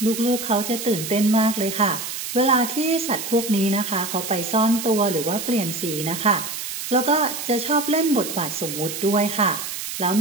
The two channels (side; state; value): right; noise; hiss, 6 dB below the sound